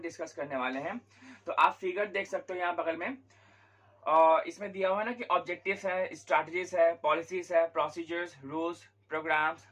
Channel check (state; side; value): identical; both; correlation 1.00